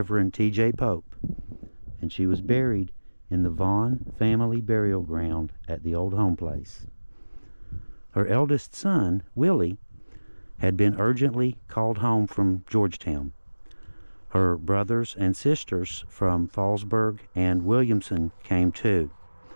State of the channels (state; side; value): inverted; both; correlation -1.00